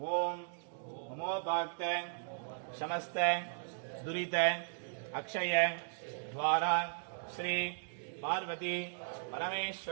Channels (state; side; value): silent; left; digital silence